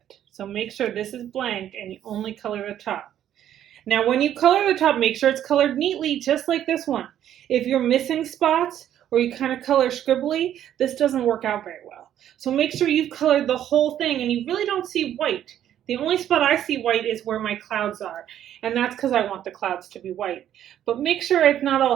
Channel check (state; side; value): quieter; left; 10.9 dB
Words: So make sure this is blank and you only color the top. Now when you color the top, make sure it's colored neatly, just like this one. If you're missing spots or you kind of color scribbly, this doesn't work out very well. So make sure you've colored the whole thing and you really don't see white. The only spot I see white is where my clouds are, and that's because I want the clouds to be white. But make sure it's not